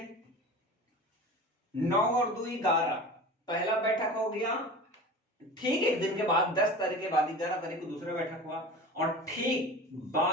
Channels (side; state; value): both; normal; correlation 0.35